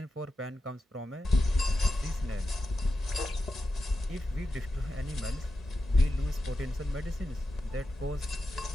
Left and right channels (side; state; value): both; normal; correlation 0.90